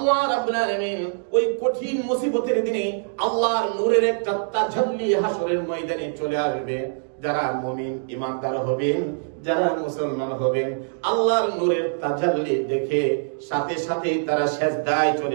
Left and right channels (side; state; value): left; silent; digital silence